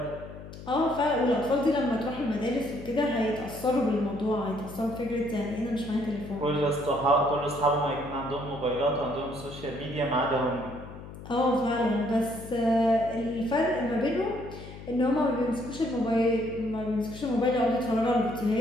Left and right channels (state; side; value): noise; left; hum, 14 dB below the sound